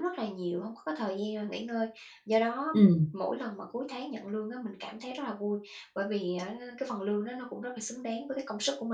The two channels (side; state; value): both; identical; correlation 1.00